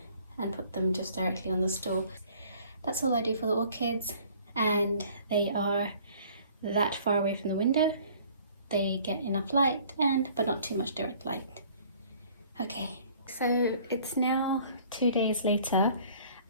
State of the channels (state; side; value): inverted; both; correlation -0.54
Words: and put them just directly on the stool. That's all I do for the orchids, and they are that far away from the window. They get enough light, but not too much direct light. Okay, so it's now 2 days later,